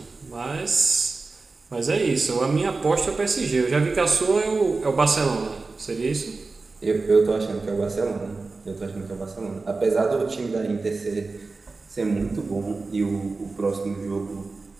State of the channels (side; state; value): left; quieter; 3.8 dB